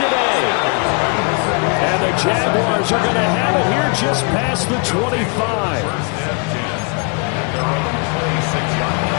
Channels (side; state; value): right; quieter; 36.8 dB